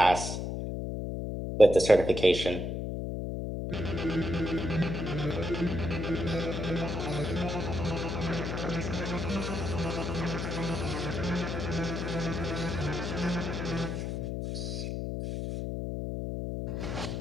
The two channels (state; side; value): noise; left; hum, 3 dB below the sound